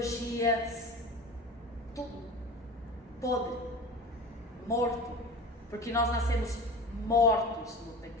tudo podre, morto, porque nós nascemos mortos no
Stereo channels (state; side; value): normal; both; correlation 0.34